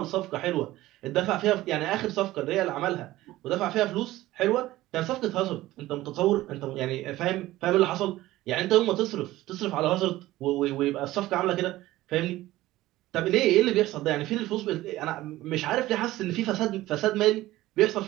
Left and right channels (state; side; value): quieter; left; 16.6 dB